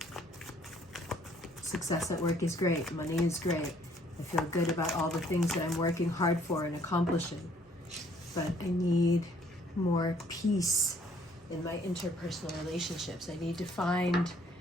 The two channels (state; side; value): normal; both; correlation 0.62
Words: Success at work is great, money is great. I feel good about all the things that I'm working hard for and accomplishing. But I need more peace in my interpersonal relationships. I need to find